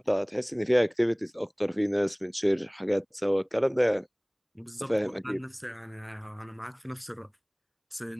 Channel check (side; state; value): both; identical; correlation 1.00